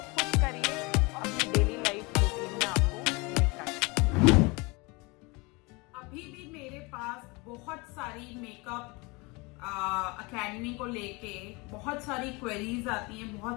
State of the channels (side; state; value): right; quieter; 26.6 dB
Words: खुश करिए और अपनी डेली लाइफ रूटीन में आपको निकालिए। अभी भी मेरे पास बहुत सारी मेकअप अकेडमी को लेके बहुत सारी क्वेरीज आती हैं,